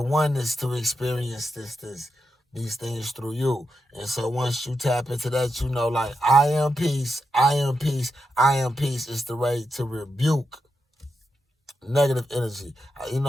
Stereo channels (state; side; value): normal; both; correlation 0.86